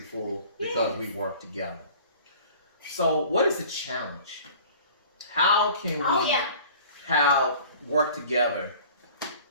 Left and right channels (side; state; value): both; inverted; correlation -0.46